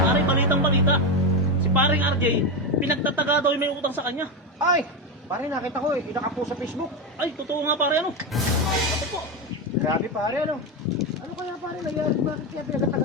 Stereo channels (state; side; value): normal; both; correlation 0.12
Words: balitang balita. Si paring RJ, pinagtataga daw yung may utang sa kanya. Ay! Pare, nakita ko eh. Nakapost sa Facebook. Ay, totoo nga pare ano. Ako po. Grabe pare, ano? Ano kaya pare nangyari? Bakit kaya